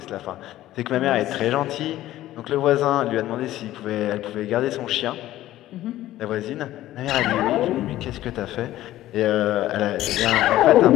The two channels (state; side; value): quieter; right; 14.5 dB